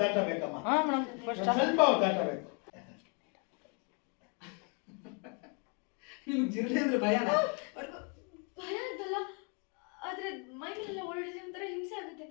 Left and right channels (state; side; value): quieter; right; 36.9 dB